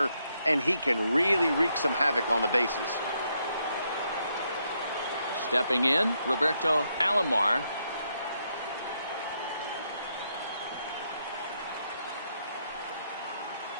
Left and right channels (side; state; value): both; inverted; correlation -0.77